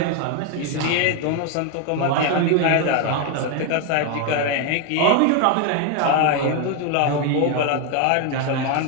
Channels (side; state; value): both; different; correlation 0.01